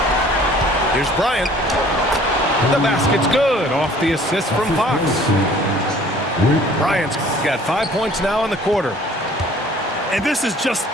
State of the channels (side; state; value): both; normal; correlation 0.53